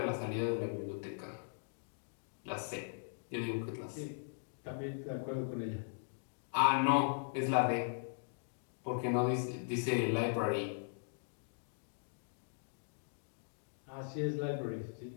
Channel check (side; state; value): right; silent; digital silence